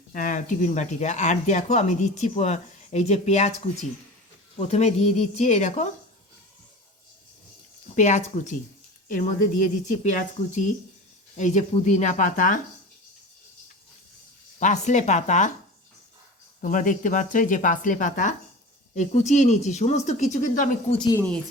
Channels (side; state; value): both; normal; correlation 0.34